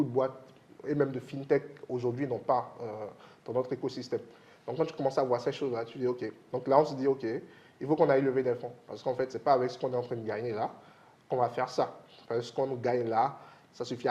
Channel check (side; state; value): both; identical; correlation 1.00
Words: de boîtes et même de fintech aujourd'hui n'ont pas dans notre écosystème. Donc, quand tu commences à voir ces choses-là, tu dis OK. Donc là, on se dit OK, il faut qu'on aille lever des fonds. Parce qu'en fait, ce n'est pas avec ce qu'on est en train de gagner là qu'on va faire ça. Parce que ce qu'on gagne là, ça suffit